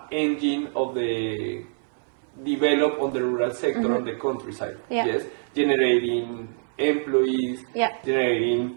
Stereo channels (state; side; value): silent; left; digital silence